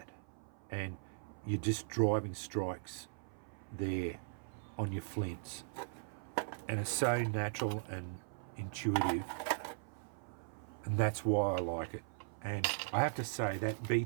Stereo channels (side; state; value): left; silent; 52 dB below the other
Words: and you're just driving strikes there on your flints, and it's so natural and intuitive, and that's why I like it. And I have to say that B